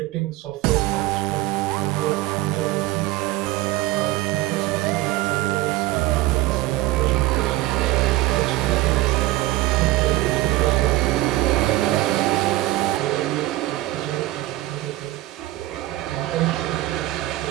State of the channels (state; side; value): quieter; left; 17.3 dB